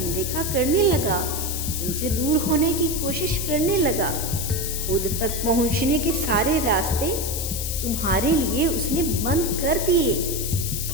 करने लगा, तुमसे दूर होने की कोशिश करने लगा। खुद तक पहुंचने के सारे रास्ते तुम्हारे लिए उसने बंद कर दिए,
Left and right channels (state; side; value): noise; left; hiss, 4 dB below the sound